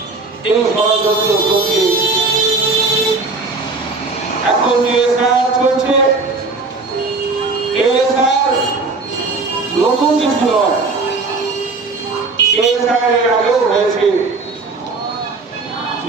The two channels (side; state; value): left; quieter; 3.8 dB